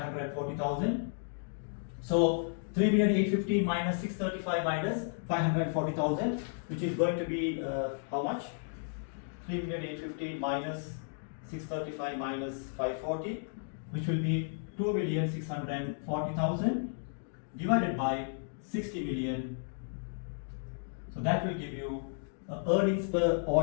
So 3,815,000 minus 635 minus 540,000, which is going to be how much? 3,815,000 minus 635 minus 540, which will be 2,640,000 divided by 60 million. So that will give you earnings per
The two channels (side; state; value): right; silent; digital silence